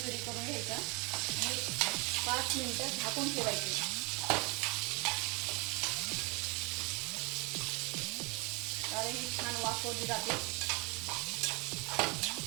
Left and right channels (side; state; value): left; quieter; 28.9 dB